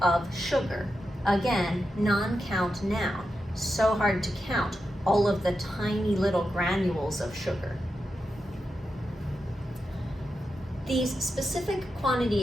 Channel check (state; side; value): normal; both; correlation 0.88